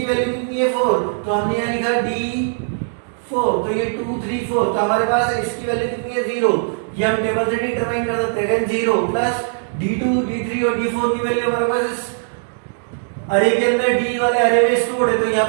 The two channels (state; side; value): silent; left; digital silence